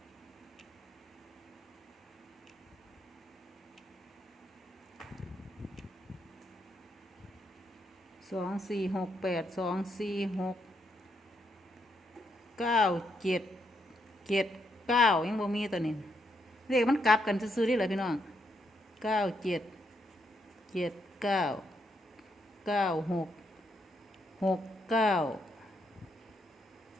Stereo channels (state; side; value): normal; both; correlation 0.78